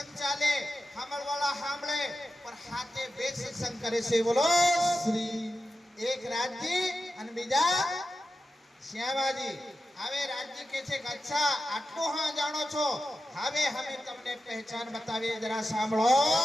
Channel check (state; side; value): normal; both; correlation 0.92